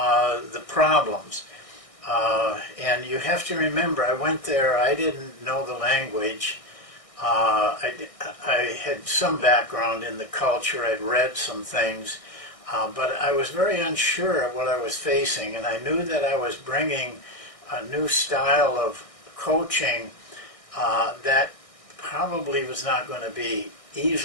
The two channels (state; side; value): late; right; 1.6 ms